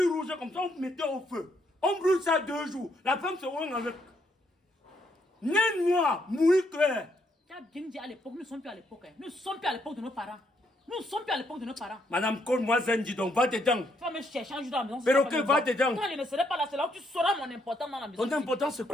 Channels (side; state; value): both; normal; correlation 0.74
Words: rouge comme ça, on mettait au feu. On brûle ça 2 jours. La femme se rend avec. Né noir, mouille clair. Tu as bien dit à l'époque, nous ne sommes plus à l'époque. Hein. Nous ne sommes plus à l'époque de nos parents. Nous ne sommes plus à l'époque de nos parents. Madame, colle-moi Zenji, donc va dedans. Tu vas me chercher un jour dans la maison. Perroquet, va dedans. Quand je ne serai pas là, c'est là où tu sauras mon importance dans la maison. Ton importance, c'est